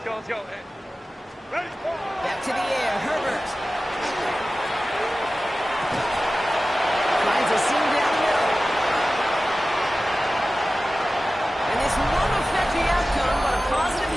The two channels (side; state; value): both; normal; correlation 0.96